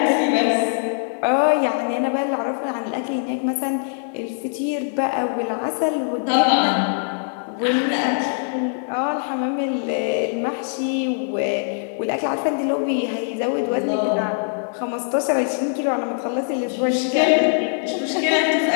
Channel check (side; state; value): right; silent; digital silence